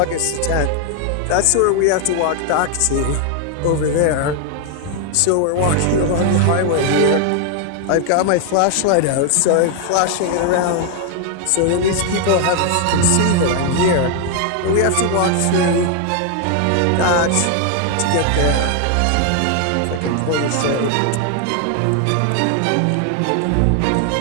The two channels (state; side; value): different; both; correlation 0.00